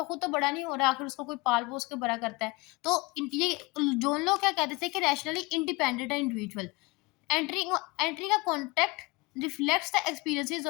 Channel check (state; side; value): quieter; right; 24.3 dB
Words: खुद तो बड़ा नहीं हो रहा, आखिर उसको कोई पाल पोस के बड़ा करता है। तो ये जोन लोग क्या कहते थे कि रैशनली इंडिपेंडेंट है individual. Entering a contract reflects the experiences